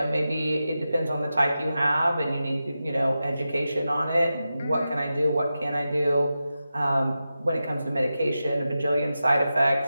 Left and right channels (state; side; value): inverted; both; correlation -0.92